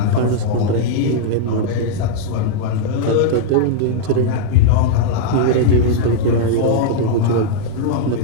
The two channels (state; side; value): different; both; correlation -0.01